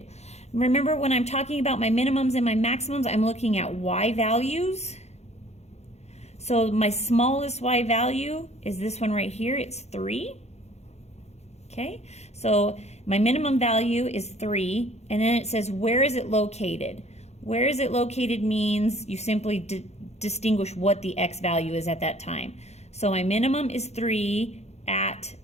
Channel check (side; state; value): right; late; 0.31 ms